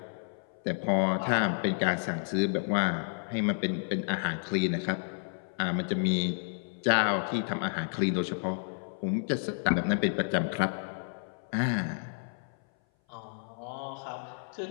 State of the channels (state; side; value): silent; right; 57 dB below the other